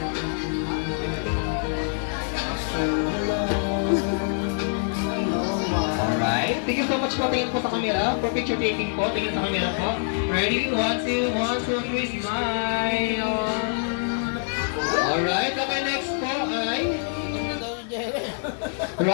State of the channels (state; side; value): silent; right; digital silence